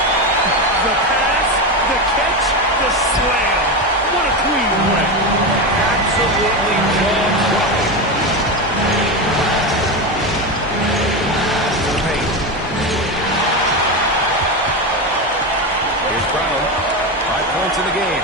The pass, the catch, the slam. What a clean win. Absolutely jaw-dropping. To the paint. Here's Brown. 5 points in the game.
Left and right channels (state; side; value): normal; both; correlation 0.16